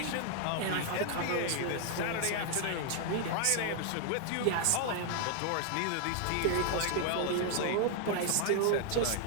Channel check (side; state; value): both; different; correlation 0.00